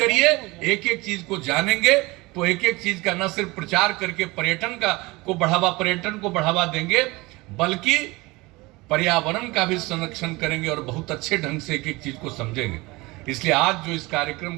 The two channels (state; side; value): quieter; left; 22.7 dB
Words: एक एक चीज को जानेंगे तो एक एक चीज का न सिर्फ प्रचार करके पर्यटन को बढ़ावा देंगे, बल्कि पर्यावरण का भी संरक्षण करेंगे, और बहुत अच्छे ढंग से एक एक चीज को समझेंगे। इसलिए आज जो इस कार्यक्रम